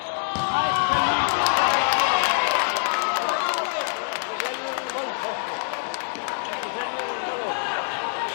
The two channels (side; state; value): right; silent; digital silence